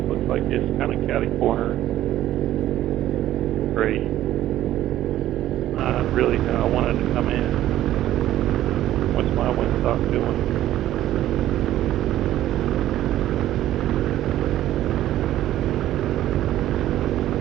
looks like it's kind of catty corner. Great. Really kind of wanted to come in. What's my windstock doing?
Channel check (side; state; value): left; quieter; 13.4 dB